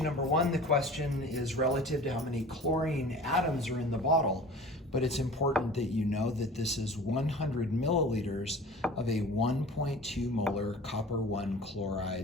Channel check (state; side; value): normal; both; correlation 0.41